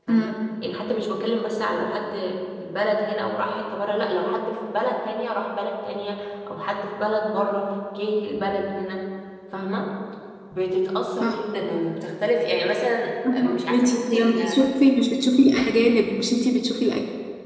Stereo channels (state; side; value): identical; both; correlation 1.00